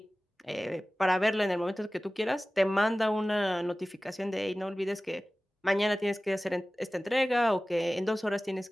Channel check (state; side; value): normal; both; correlation 0.97